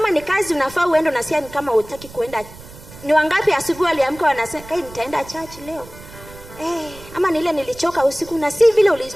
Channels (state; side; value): noise; right; rumble, 18 dB below the sound